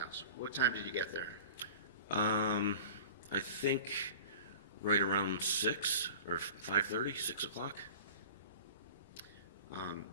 What time did you get there? I think right around 6 or 5:30, 6 o'clock.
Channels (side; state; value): both; inverted; correlation -0.40